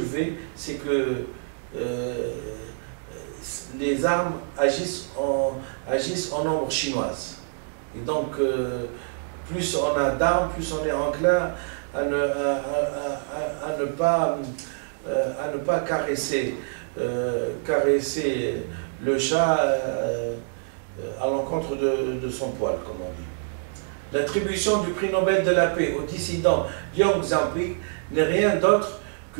c'est que les armes agissent en nombre chinoise. Et donc, plus on a d'armes, plus on est enclin à ne pas caresser le chat à l'encontre de son poil, comme on dit. L'attribution du prix Nobel de la paix au dissident Liu Xiaobo n'est rien d'autre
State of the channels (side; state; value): left; silent; digital silence